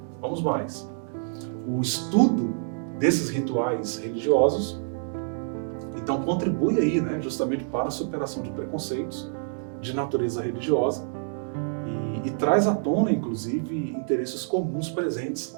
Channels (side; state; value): left; silent; digital silence